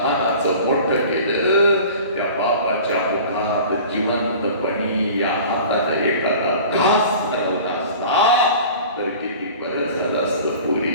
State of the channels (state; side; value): inverted; both; correlation -0.41